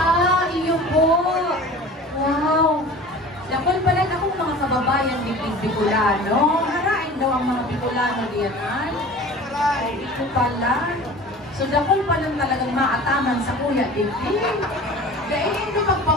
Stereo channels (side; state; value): both; normal; correlation 0.40